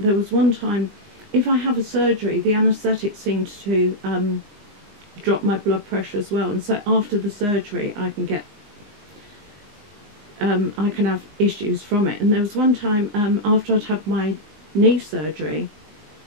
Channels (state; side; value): late; left; 20 ms